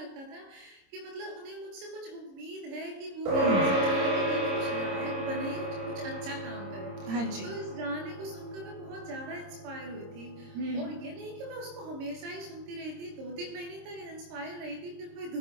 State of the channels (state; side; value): late; left; 26 ms